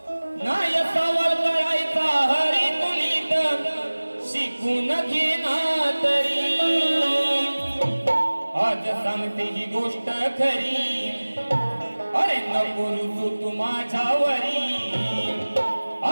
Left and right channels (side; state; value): both; inverted; correlation -1.00